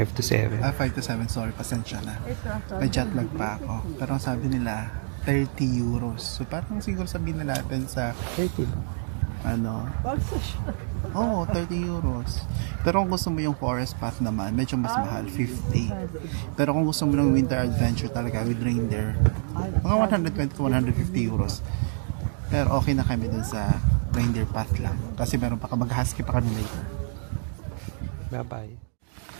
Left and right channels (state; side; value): silent; left; digital silence